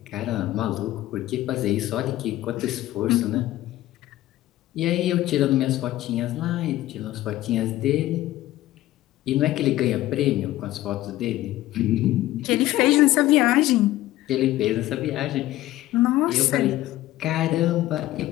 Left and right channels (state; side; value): quieter; right; 15.5 dB